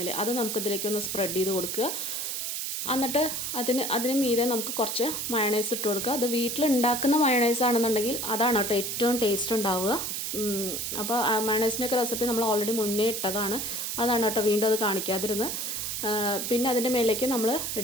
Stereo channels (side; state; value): right; noise; hiss, 3 dB below the sound